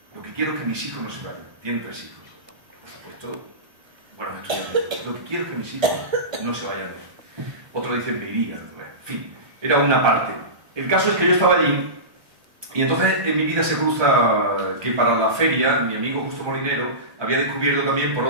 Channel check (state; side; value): late; left; 1.2 ms